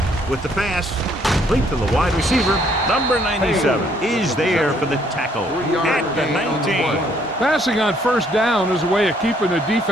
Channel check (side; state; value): both; normal; correlation 0.66